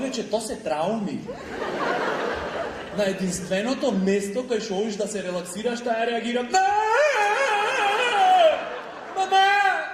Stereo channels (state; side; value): identical; both; correlation 1.00